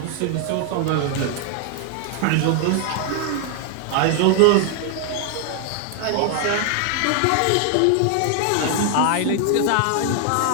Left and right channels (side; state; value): both; different; correlation 0.00